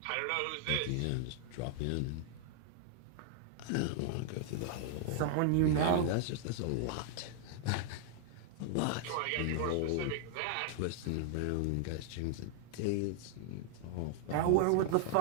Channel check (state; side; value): different; both; correlation -0.01